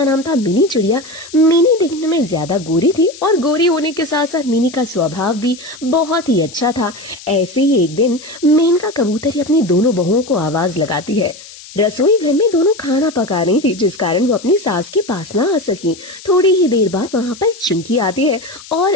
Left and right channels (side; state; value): left; noise; hiss, 18 dB below the sound